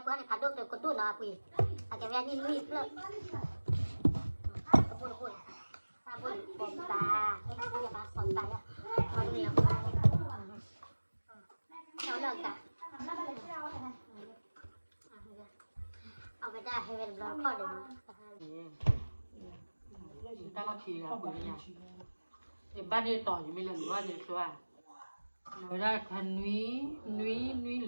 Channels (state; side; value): inverted; both; correlation -1.00